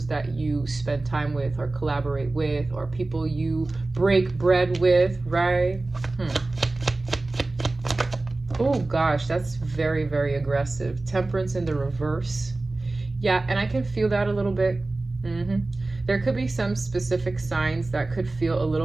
that you spend time with or collaborate with or people you break bread with, right? Oh gosh, that's very, very aggressive. Temperance in the reverse. Yeah, and I can feel that a little bit. There could be some specific signs that could feel a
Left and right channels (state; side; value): quieter; left; 3.1 dB